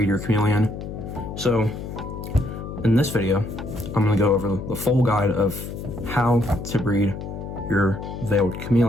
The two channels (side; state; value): left; noise; hum, 8 dB below the sound